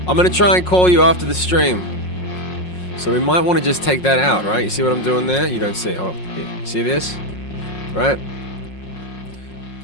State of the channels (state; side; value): late; right; 5.5 ms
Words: I'm gonna try and call you after the stream. So we might want to just take that out, right? You see what I'm doing there? You don't see, hold on, here. See this? Right?